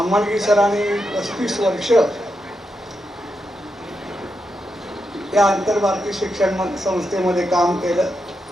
सरांनी 35 वर्ष या आंतरभारतीय शिक्षण संस्थेमध्ये काम केलं.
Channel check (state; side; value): normal; both; correlation 0.85